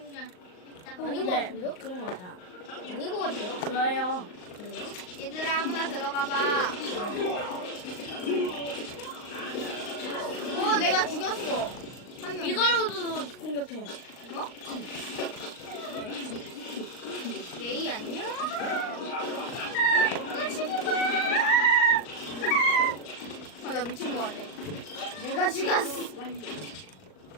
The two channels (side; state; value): right; late; 39 ms